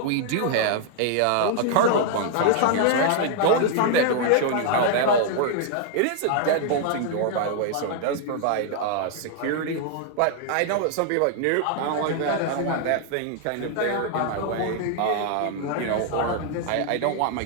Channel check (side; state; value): both; different; correlation 0.00